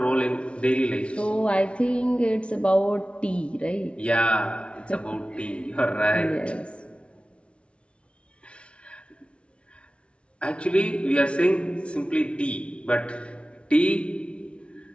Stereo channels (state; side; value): late; right; 0.060 ms